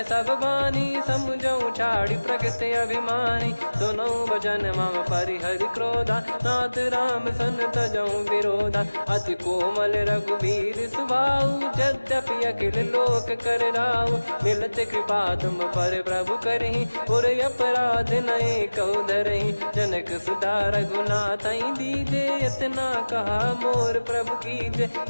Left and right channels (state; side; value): inverted; both; correlation -1.00